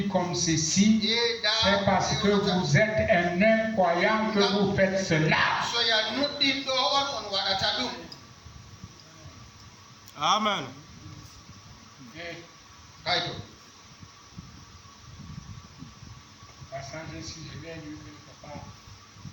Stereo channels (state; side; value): identical; both; correlation 1.00